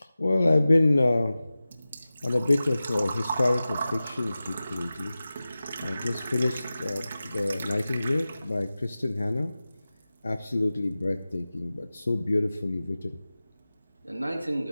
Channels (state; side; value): inverted; both; correlation -0.96